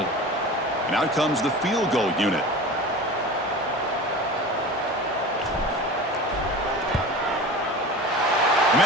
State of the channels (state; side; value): normal; both; correlation 0.34